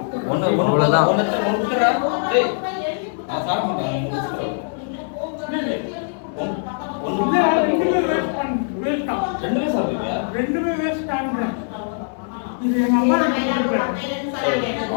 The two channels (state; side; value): silent; right; digital silence